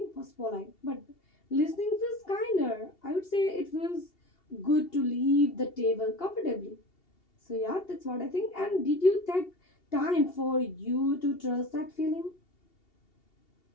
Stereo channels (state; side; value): late; right; 2.8 ms